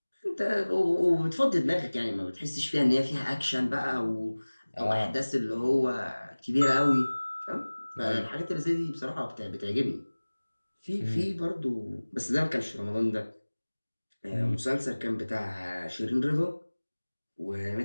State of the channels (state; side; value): inverted; both; correlation -1.00